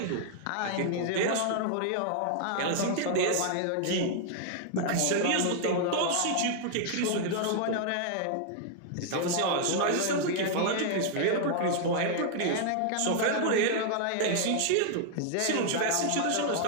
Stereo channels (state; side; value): different; both; correlation 0.00